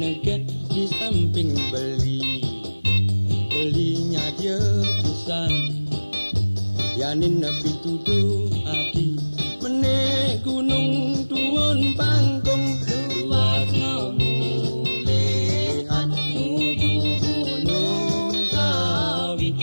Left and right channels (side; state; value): both; inverted; correlation -1.00